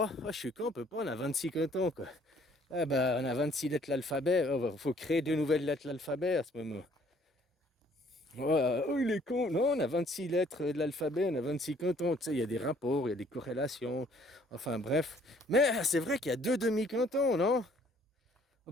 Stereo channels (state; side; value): normal; both; correlation 0.60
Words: Ah, je suis con, on peut pas, on a 26 cantons, quoi. Ah bah, on a 26 lettres de l'alphabet, il faut créer deux nouvelles lettres de l'alphabet à ce moment. Oh, il est con. Non, on a 26 lettres de l'alphabet, on a 26 cantons. Tu sais, il y a des rapports, il y a des corrélations. Enfin, bref. Mais c'est vrai qu'il y a deux demi-cantons, non? On